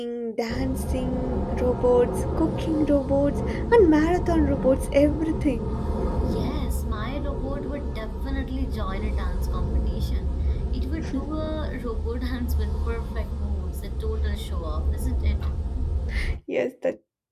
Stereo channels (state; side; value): identical; both; correlation 1.00